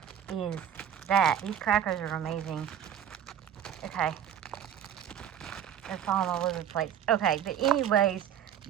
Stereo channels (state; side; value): quieter; left; 9.4 dB